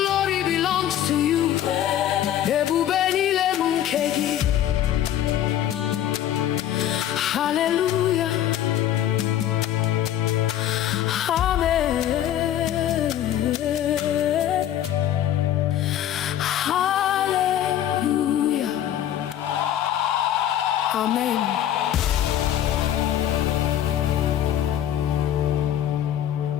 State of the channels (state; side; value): quieter; right; 11.3 dB